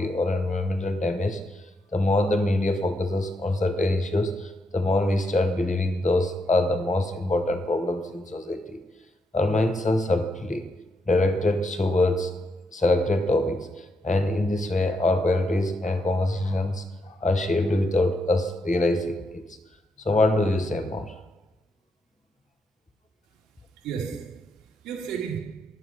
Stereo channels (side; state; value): both; normal; correlation 0.80